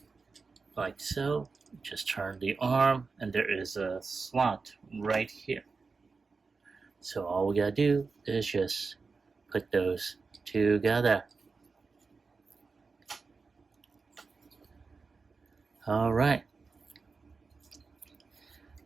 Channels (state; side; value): quieter; left; 4.5 dB